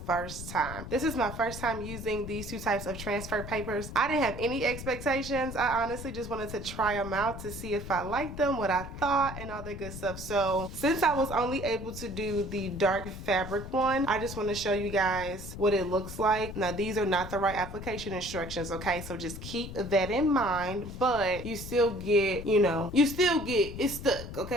time. This is my first time using these two types of transfer papers. I didn't have any expectations. I honestly just wanted to try them out to see if I liked them, what I thought, and all the good stuff. So since I was only able to do the dark fabric one, I just want to show you guys what it looks like. Now these are not the right application instructions, okay? So just keep that in mind, but you still get, it's stuck,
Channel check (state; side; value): noise; left; rumble, 10 dB below the sound